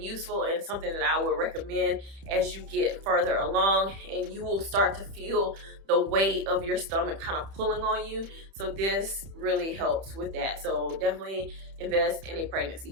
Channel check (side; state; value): left; late; 31 ms